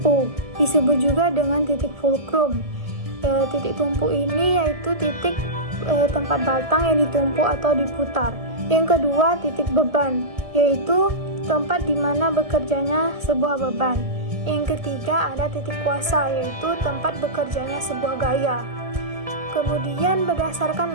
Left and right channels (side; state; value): left; late; 1.6 ms